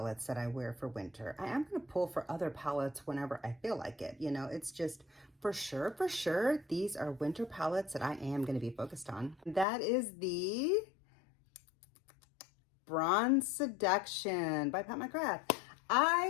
that I wear for winter. I am going to pull for other palettes whenever I feel like it. You know, it's just for sure, these are winter palettes that I am going to be focused on. That is the Bronze Seduction by Pat McGrath.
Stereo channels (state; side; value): drops out; right; at 9.7 s